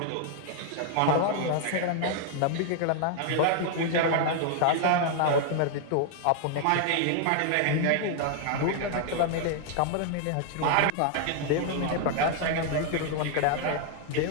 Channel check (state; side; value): different; both; correlation 0.00